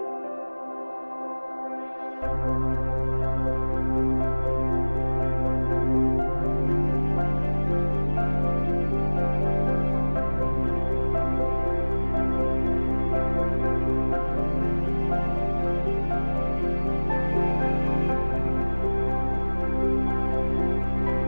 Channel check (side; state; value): both; inverted; correlation -1.00